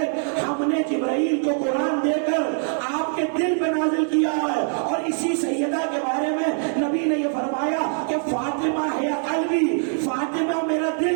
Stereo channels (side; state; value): left; silent; 62 dB below the other